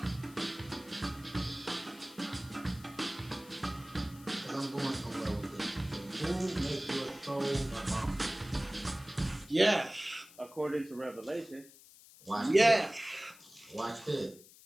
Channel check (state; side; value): noise; left; hiss, 21 dB below the sound